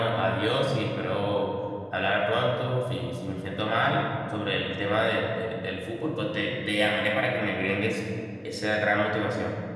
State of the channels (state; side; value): identical; both; correlation 1.00